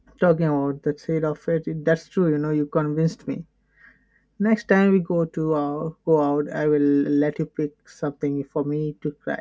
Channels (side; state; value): both; identical; correlation 1.00